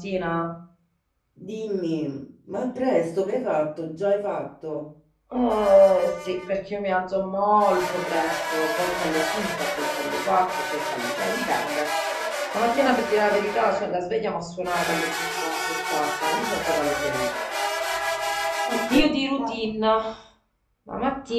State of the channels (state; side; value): identical; both; correlation 1.00